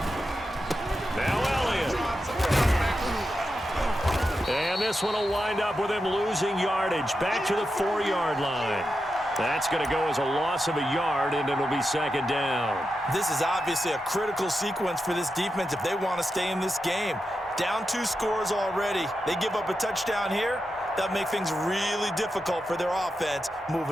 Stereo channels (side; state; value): both; normal; correlation 0.89